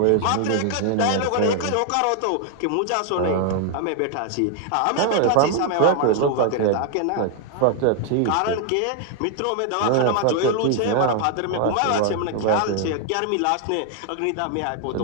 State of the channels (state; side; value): different; both; correlation 0.00